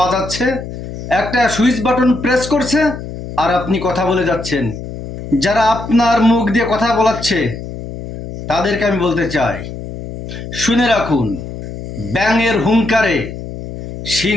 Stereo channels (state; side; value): noise; left; hum, 10 dB below the sound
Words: একটা সুইচ বাটন প্রেস করছে আর আপনি কথা বলে যাচ্ছেন। যারা আপনার মুখ দিয়ে কথা বলাচ্ছে তাদেরকে আমি বলতে চাই, শুনে রাখুন, ব্যাঙের হুঙ্কারে